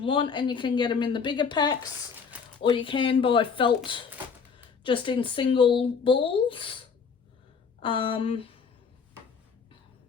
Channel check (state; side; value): quieter; right; 5.8 dB